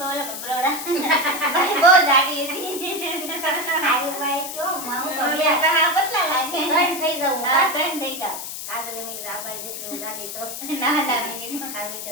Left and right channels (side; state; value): left; noise; hiss, 8 dB below the sound